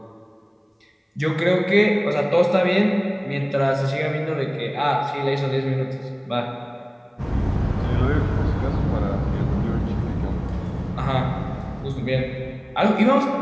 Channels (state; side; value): identical; both; correlation 1.00